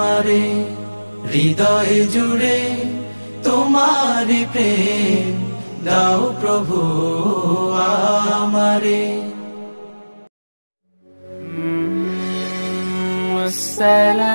হৃদয় জুড়ে তোমারি প্রেম দাও প্রভু আমারে।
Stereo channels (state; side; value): inverted; both; correlation -1.00